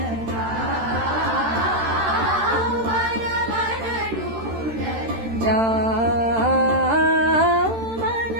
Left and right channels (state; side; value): late; left; 13 ms